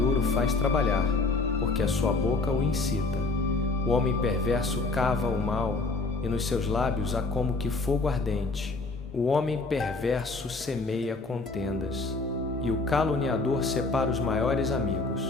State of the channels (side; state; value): right; quieter; 3.5 dB